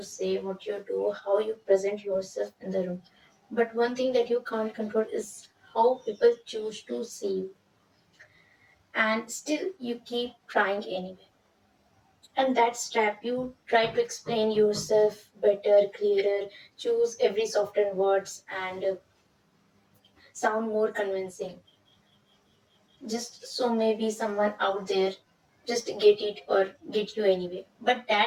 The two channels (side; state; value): both; identical; correlation 1.00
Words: say, what you do, how you present yourself in the room. But one thing that you can't control is how people choose to see you. And still, you keep trying anyway. And that's trap. You try to explain yourself better, clearer, choose every softer words and sound more convincing. Just so maybe someone out there just get it or get you anyway. But